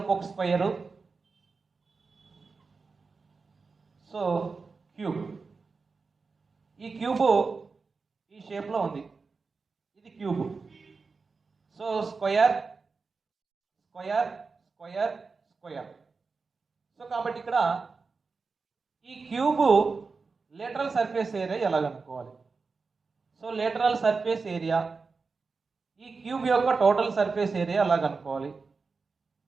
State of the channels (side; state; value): left; quieter; 4.5 dB